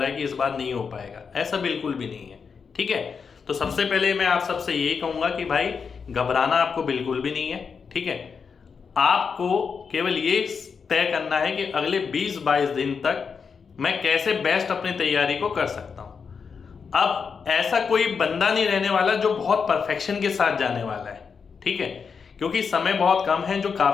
है कि इस बार नहीं हो पाएगा। ऐसा बिल्कुल भी नहीं है। ठीक है, तो सबसे पहले मैं आप सबसे यही कहूँगा कि भाई घबराना आपको बिल्कुल भी नहीं है। ठीक है, आपको केवल ये तय करना है कि अगले 20-22 दिन तक मैं कैसे बेस्ट अपनी तैयारी को कर सकता हूँ। अब ऐसा कोई बंदा नहीं रहने वाला जो बहुत परफेक्शन के साथ जाने वाला है। ठीक है, क्योंकि समय बहुत कम है। जो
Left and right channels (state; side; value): quieter; right; 5.8 dB